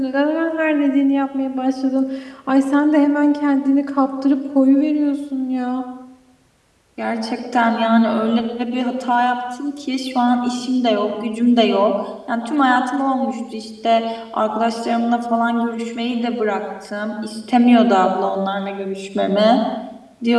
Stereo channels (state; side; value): identical; both; correlation 1.00